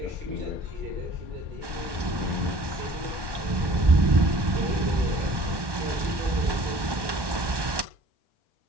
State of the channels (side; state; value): left; late; 1.1 ms